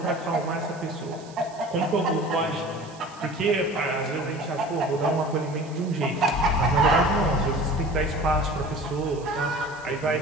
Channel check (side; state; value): right; noise; hiss, 23 dB below the sound